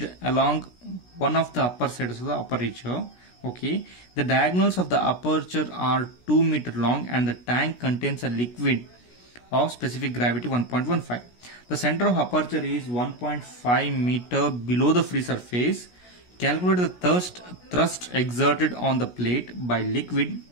along one of the upper sides of the aperture. Okay, the diagonals of the aperture are 2 meter long and the tank contains a liquid of specific gravity 1.15. The center of aperture is 1.5 meter below the free surface. Calculate the thrust exerted on the plate by liquid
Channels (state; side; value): late; right; 17 ms